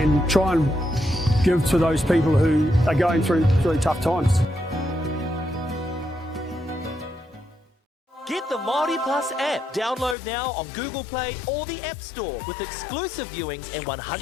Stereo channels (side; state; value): right; drops out; at 10.2 s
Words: and try and give to those people who are going through really tough times. Get the MāORI Plus app. Download now on Google Play or the App Store with exclusive viewings and 100%